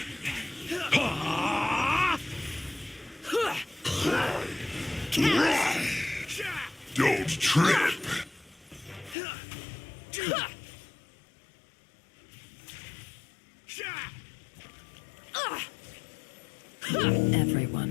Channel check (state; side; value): drops out; right; at 9.2 s